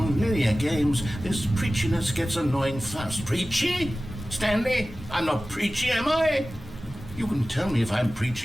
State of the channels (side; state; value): both; normal; correlation 0.96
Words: games, this preachiness gets annoying fast. Preachy? Stanley, I'm not preachy, am I? You can tell me if I'm